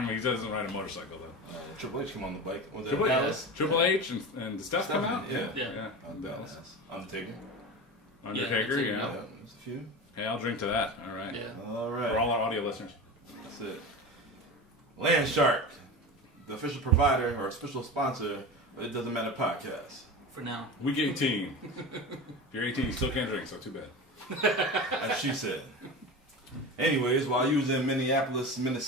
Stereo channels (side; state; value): both; normal; correlation 0.28